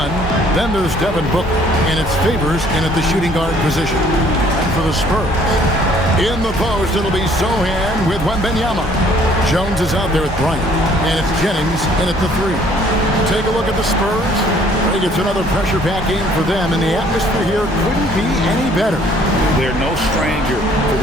Then there's Devin Booker. And it's Favors in at the shooting guard position. And for the Spurs, in the post, it'll be Sohan with Wembanyama. Jones is out there with Bryant. And it's Jennings in at the three. Take a look at the Spurs. I think it's another pressure-packed game for them, and the atmosphere here couldn't be any better. They're no stranger to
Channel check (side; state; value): both; normal; correlation 0.59